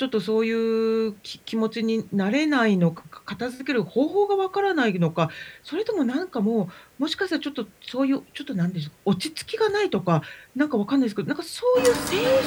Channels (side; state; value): both; identical; correlation 1.00